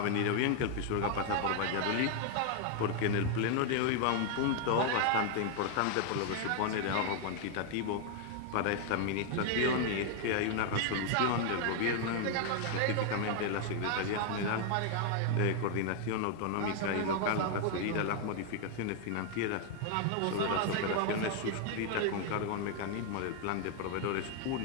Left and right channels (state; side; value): different; both; correlation 0.00